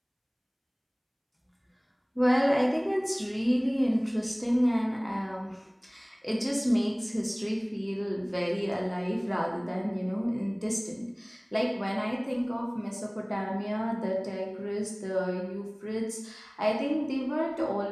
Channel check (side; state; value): both; identical; correlation 1.00